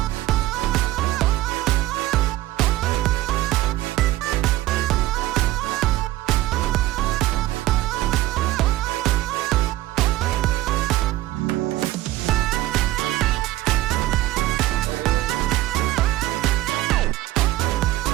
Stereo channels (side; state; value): left; quieter; 16.3 dB